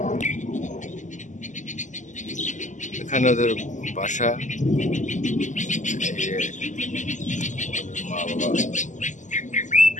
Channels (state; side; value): late; right; 0.36 ms